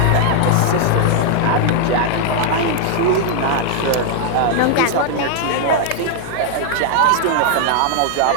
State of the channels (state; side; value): different; both; correlation 0.00